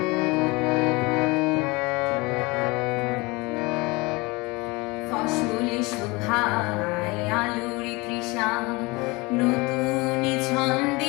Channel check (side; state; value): right; quieter; 24.6 dB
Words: ফসল শোভায় আলোর তৃষা নতুন